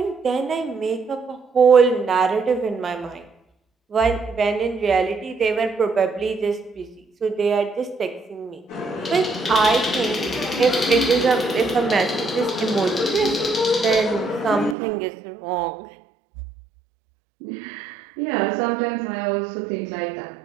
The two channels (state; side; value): drops out; left; at 14.8 s